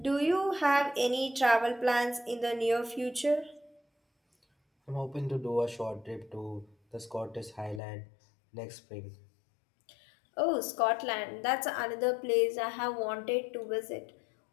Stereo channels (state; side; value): drops out; right; at 7.8 s